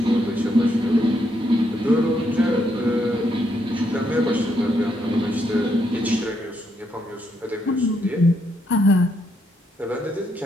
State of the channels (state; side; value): normal; both; correlation 0.77